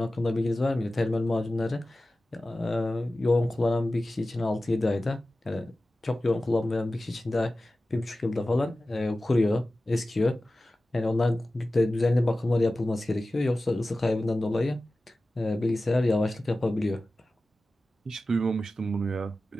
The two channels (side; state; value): both; normal; correlation 0.95